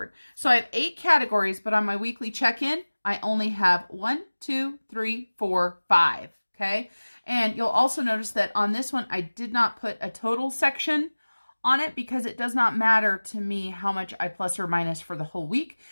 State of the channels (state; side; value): inverted; both; correlation -1.00